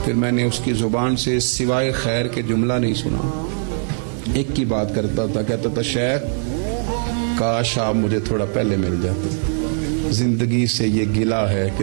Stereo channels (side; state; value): left; silent; digital silence